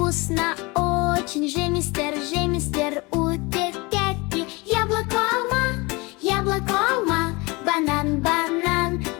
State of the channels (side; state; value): right; quieter; 25.6 dB